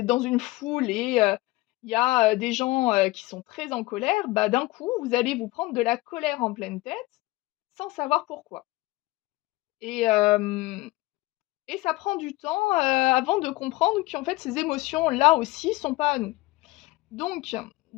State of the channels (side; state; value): right; quieter; 20.3 dB